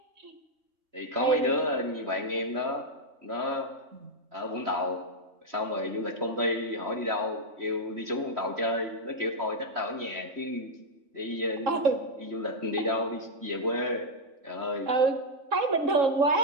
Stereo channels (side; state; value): left; late; 3.7 ms